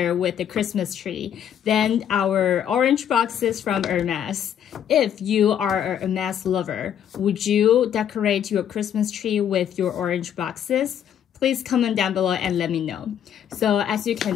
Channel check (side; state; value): right; quieter; 9.4 dB